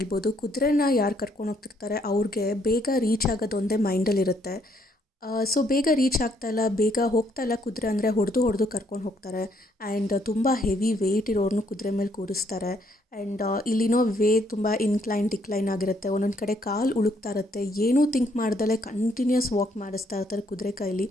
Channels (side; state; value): both; normal; correlation 0.70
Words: ಕುದುರೆನ ಯಾರು ಕರ್ಕೊಂಡು ಹೋಗ್ತಿರ್ತಾರೆ ಅವ್ರಿಗೆ ಬೇಗ ರೀಚ್ ಆಗೋದೊಂದೇ ಮೈಂಡಲ್ಲಿರುತ್ತೆ. ಸೊ ಬೇಗ ರೀಚ್ ಆಗ್ತಾಯಿಲ್ಲ, ಬೇಗ ಹೋಗ್ತಾಯಿಲ್ಲ ಕುದುರೆ ಅಂದರೆ ಹೊಡೆದು ಕರ್ಕೊಂಡು ಹೋಗ್ತಾರೆ. ಆ್ಯಂಡ್ ತುಂಬ ಹೆವಿ ವೆಯ್ಟ್ ಇರೋರ್ನು ಕುದುರೆ ಮೇಲೆ ಕೂರಿಸ್ತಾರೆ. ಆ್ಯಂಡ್ ಇಲ್ಲಿನೋ ವೇ ತುಂಬ ಡಿಕ್ಲೈನ್ ಆಗಿರುತ್ತೆ. ಒಂದೊಂದು ಕಡೆ ಕಾಲು ಉಳುಕ್ತಾ ಇರುತ್ತೆ. ಏನೂ ಥಿಂಕ್ ಮಾಡ್ದಲೇ ಕಂಟಿನ್ಯೂಸ್ ವಾಕ್ ಮಾಡಿಸ್ತಾ ಇರ್ತಾರೆ ಕುದುರೆ ಕೈಲಿ.